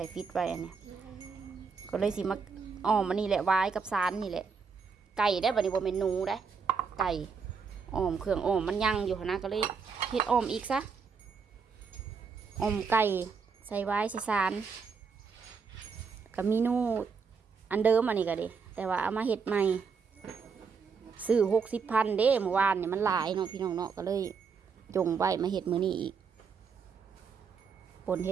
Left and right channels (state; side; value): quieter; left; 5.6 dB